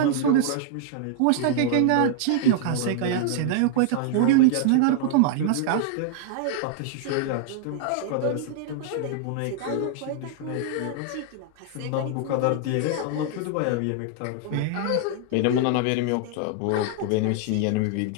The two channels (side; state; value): both; different; correlation 0.00